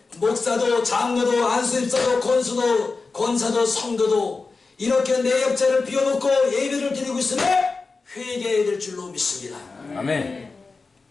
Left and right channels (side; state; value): right; quieter; 4.1 dB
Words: 목사도 장로도 안수집사도 권수도 권사도 성도도 이렇게 내 옆자를 비워놓고 예배를 드리고 있으면 회개해야 될 줄로 믿습니다. 아멘.